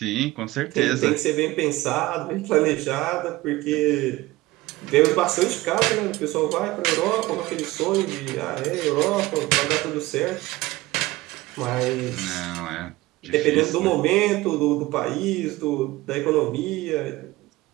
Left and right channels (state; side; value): quieter; left; 19.1 dB